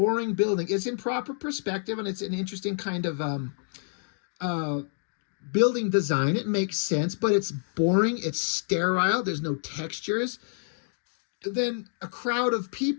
building. It's in proper perspective, and it's an interesting kind of uh, building design. It makes sense, but it's boring. It's sterile. There's no textures. Then a crowd of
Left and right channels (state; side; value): silent; right; digital silence